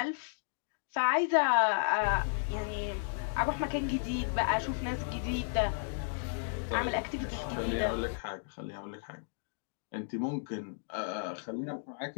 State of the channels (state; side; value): silent; right; digital silence